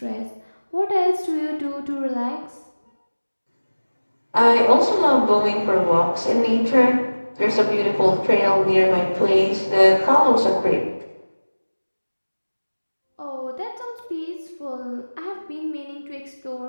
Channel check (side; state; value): both; inverted; correlation -1.00